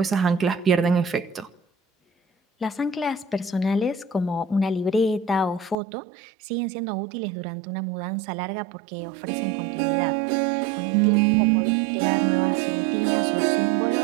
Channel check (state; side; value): drops out; left; at 5.8 s